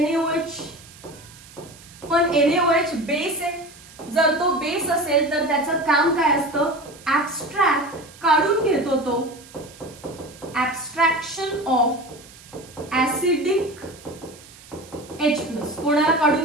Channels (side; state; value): right; noise; hiss, 21 dB below the sound